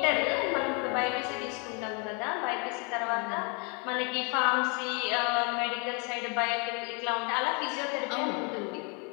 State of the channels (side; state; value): right; quieter; 31.9 dB